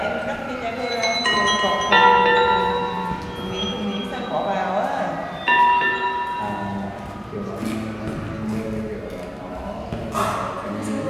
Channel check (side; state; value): both; identical; correlation 1.00